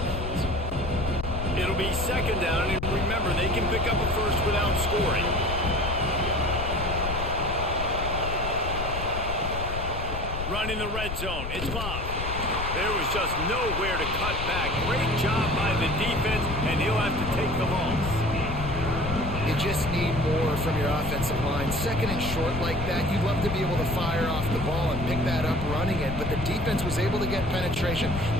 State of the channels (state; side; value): noise; left; rumble, 6 dB below the sound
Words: bounds? It'll be second down, and remember, they can pick up a first without scoring. Run in the red zone. It's Bob. There was just nowhere to cut back. Great job by the defense, and he'll have to take the loss. You just need more from your offensive line. Second and short like that, you'd love to be able to fire off the ball and pick that up running it, but the defense was able to get penetration.